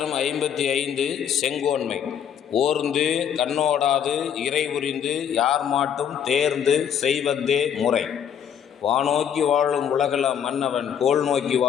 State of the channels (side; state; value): right; quieter; 8.6 dB